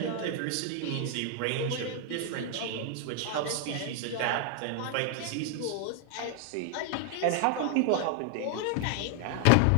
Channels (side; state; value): both; different; correlation 0.00